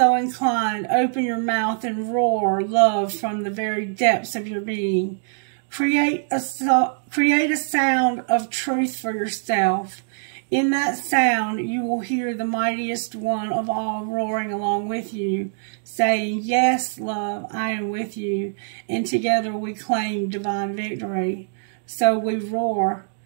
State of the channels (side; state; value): left; silent; digital silence